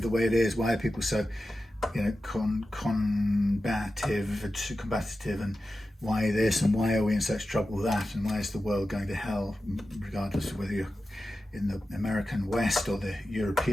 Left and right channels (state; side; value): normal; both; correlation 0.92